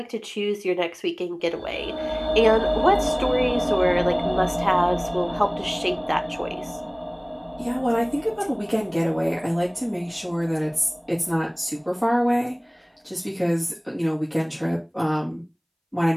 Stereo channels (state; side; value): identical; both; correlation 1.00